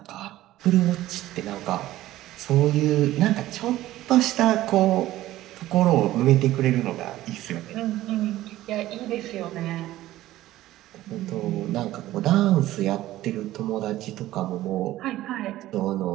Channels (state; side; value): quieter; left; 15.3 dB